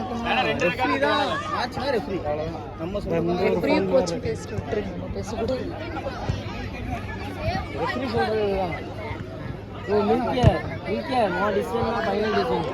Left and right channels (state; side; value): identical; both; correlation 1.00